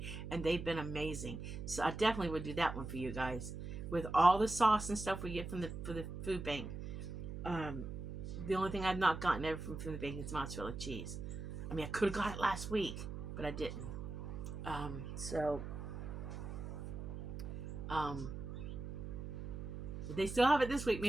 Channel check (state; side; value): noise; right; hum, 7 dB below the sound